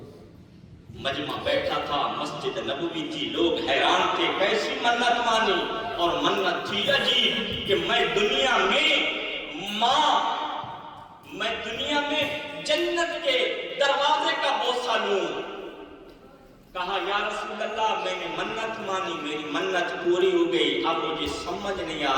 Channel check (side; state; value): both; identical; correlation 1.00